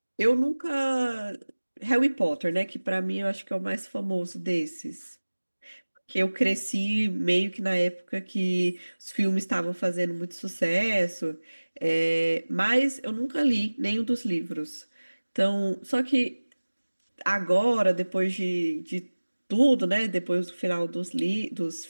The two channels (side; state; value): both; inverted; correlation -1.00